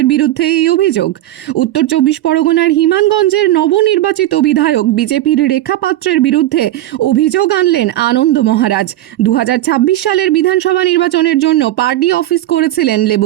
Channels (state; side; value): quieter; left; 14.7 dB